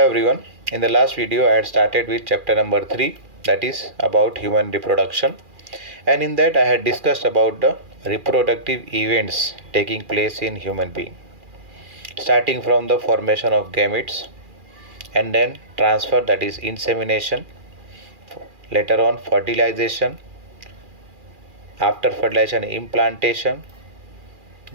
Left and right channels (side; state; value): left; late; 2.4 ms